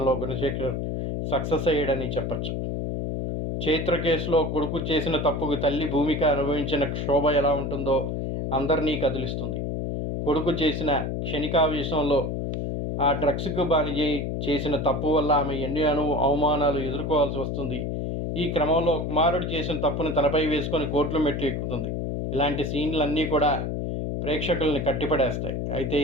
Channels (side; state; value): left; noise; hum, 2 dB below the sound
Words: గుణశేఖర్ సక్సెస్ అయ్యాడని చెప్పచ్చు. చైత్ర కేసులో కొడుకు చేసిన తప్పుకు తల్లి భూమిక అనుభవించిన క్షోభ ఎలా ఉంటుందో అందరినీ కదిలిస్తుంది. కొడుకు చేసిన క్షణికావేశంలో ఆ డ్రగ్స్కు బాని చేసిన తప్పు వల్ల ఆమె ఎన్ని అవమానాలు ఎదుర్కోవాల్సి వస్తుంది. ఈ క్రమంలో కుమారుడు చేసిన తప్పును తనపై వేసుకొని కోర్టులో మెట్లు ఎక్కుతుంది. ఇలాంటి సీన్లన్నీ కూడా ప్రేక్షకుల్ని కట్టిపడేస్తాయి. అయితే